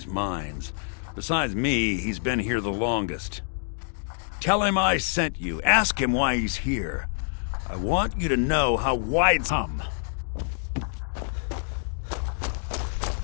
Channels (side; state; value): right; silent; digital silence